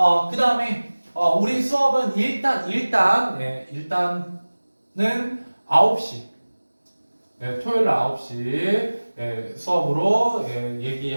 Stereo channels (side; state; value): both; inverted; correlation -1.00